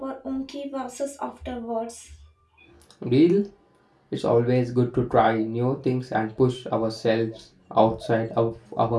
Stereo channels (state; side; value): identical; both; correlation 1.00